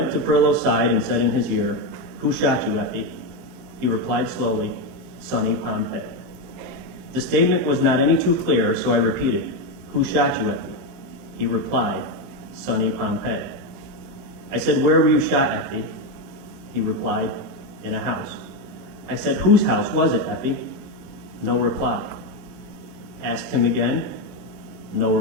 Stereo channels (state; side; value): late; left; 25 ms